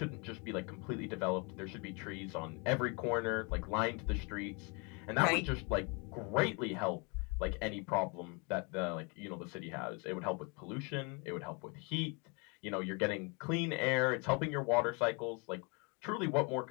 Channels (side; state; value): right; quieter; 32.4 dB